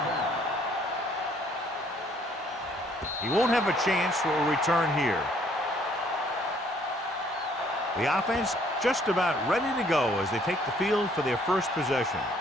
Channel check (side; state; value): both; normal; correlation 0.63